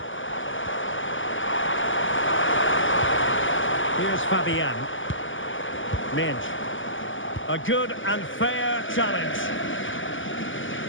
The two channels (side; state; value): right; late; 0.57 ms